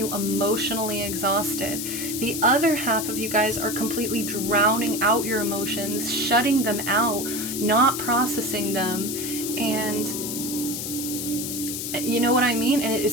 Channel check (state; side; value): noise; left; hiss, 5 dB below the sound